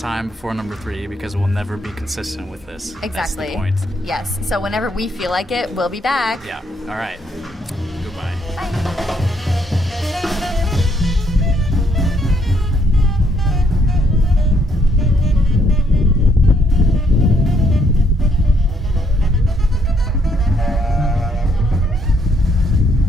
before number 3 because we'll never be consistent with this. Exactly. That's the point. Yes. So whenever we feel like it, we'll be back. Yeah. All right.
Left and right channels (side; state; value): both; normal; correlation 0.71